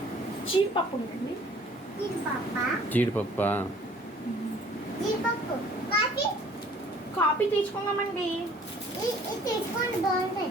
జీడిపప్పు ఉందండి. జీడిపప్పు. కాఫీ తీసుకుందామండి. తీసుకోండి, బాగుంటుంది.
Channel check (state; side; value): normal; both; correlation 0.54